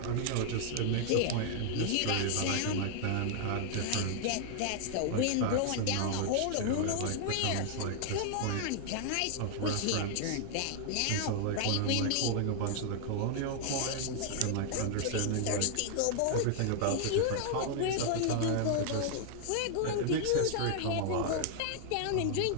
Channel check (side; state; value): both; different; correlation 0.00